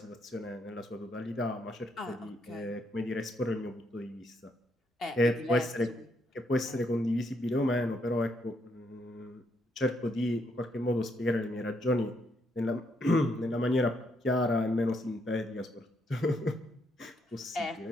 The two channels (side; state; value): both; normal; correlation 0.75